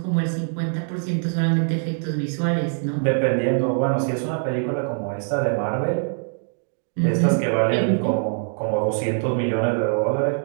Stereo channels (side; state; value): left; silent; 63 dB below the other